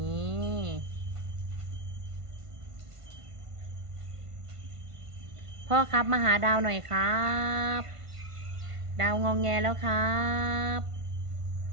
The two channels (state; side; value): late; left; 1.5 ms